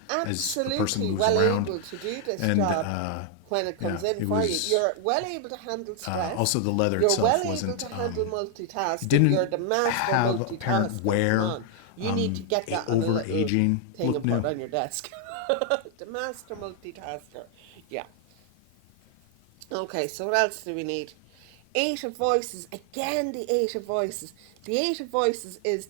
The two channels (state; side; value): different; both; correlation 0.00